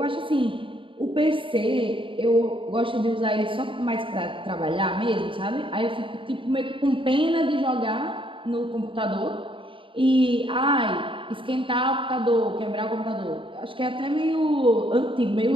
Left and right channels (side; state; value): left; late; 0.25 ms